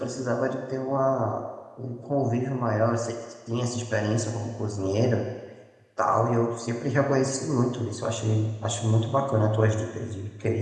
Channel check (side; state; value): both; identical; correlation 1.00